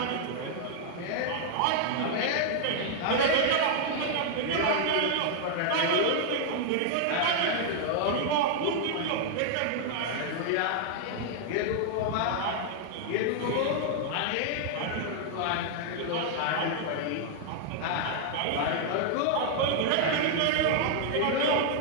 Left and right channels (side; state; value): both; different; correlation -0.01